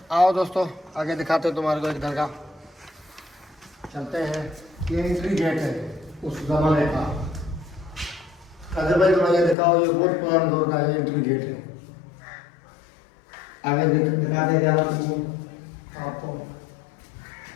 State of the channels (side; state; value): right; drops out; at 9.6 s